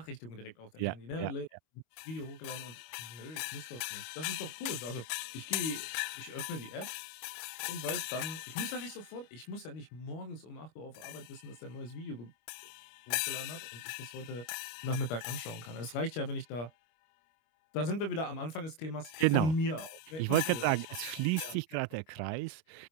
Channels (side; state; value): right; late; 26 ms